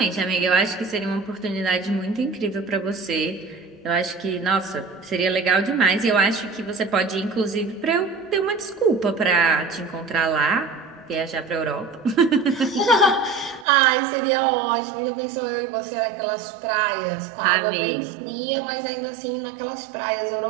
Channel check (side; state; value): left; drops out; at 13.7 s